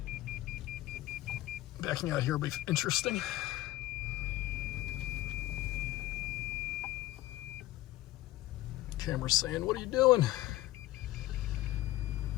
backing out here will be interesting. Camera's saying, "What are you doing?"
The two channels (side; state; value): right; quieter; 16.2 dB